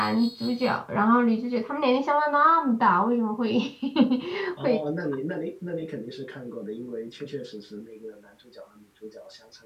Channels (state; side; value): identical; both; correlation 1.00